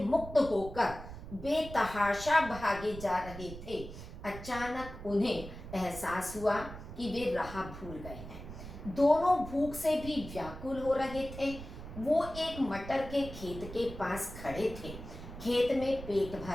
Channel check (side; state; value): right; noise; rumble, 12 dB below the sound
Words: मुक्त होकर बेतहाशा भागे जा रहे थे, अचानक उन्हें एहसास हुआ कि वे राह भूल गए हैं। दोनों भूख से भी व्याकुल हो रहे थे। वो एक मटर के खेत के पास खड़े थे। खेत में पेट